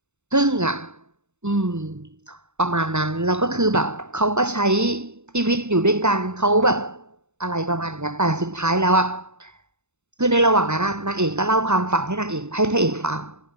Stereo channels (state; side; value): late; left; 0.82 ms